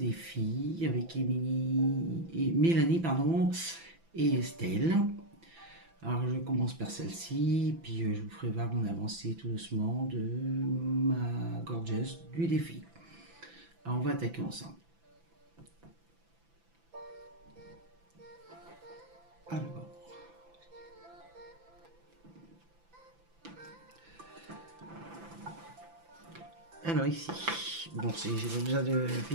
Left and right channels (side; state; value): left; late; 5.9 ms